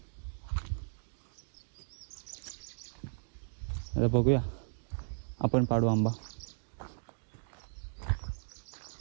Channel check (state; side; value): silent; left; digital silence